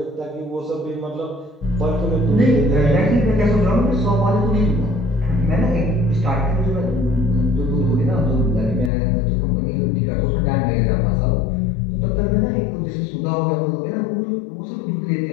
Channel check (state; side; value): drops out; right; at 8.9 s